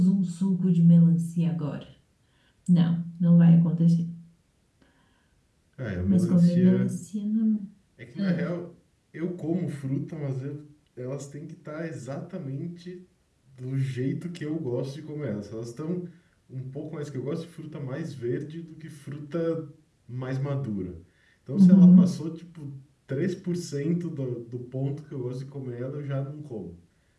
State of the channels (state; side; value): identical; both; correlation 1.00